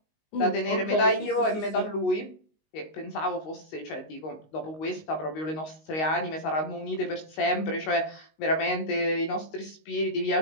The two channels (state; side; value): late; right; 19 ms